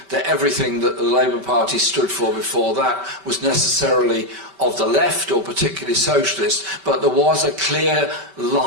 that everything that the Labour Party stood for before that was necessarily of the left or particularly socialist, but there was a clear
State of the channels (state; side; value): late; left; 5.2 ms